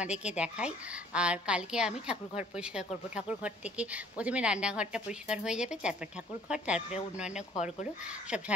দেখাই। আর কালকে আমি ঠাকুরঘর পরিষ্কার করব। ঠাকুরঘর থেকে প্রথমে রান্নাঘরটা পরিষ্কার হয়ে যাবে, তারপর ঠাকুরঘর, তারপরে অন্যান্য ঘরগুলো সব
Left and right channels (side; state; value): both; normal; correlation 0.56